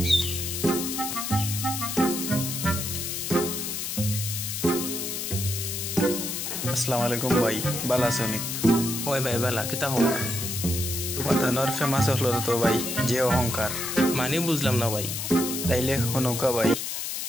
আসসালামু আলাইকুম ভাই, ভালো আছো নি? ওই ভাই বালা কিতা খবর? তোমার ধানর ফেমাস হলো তো ভাই, যে অহংকার। মানে বুঝলাম না ভাই। তাইলে হনুকা ভাই,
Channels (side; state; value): left; noise; hiss, 4 dB below the sound